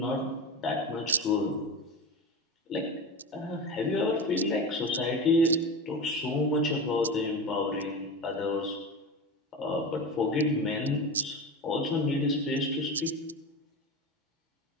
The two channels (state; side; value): normal; both; correlation 0.26